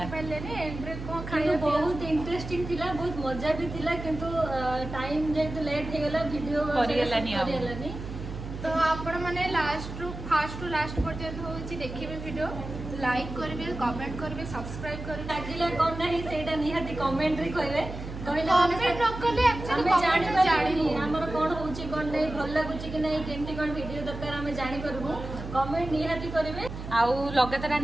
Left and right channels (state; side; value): noise; right; hum, 9 dB below the sound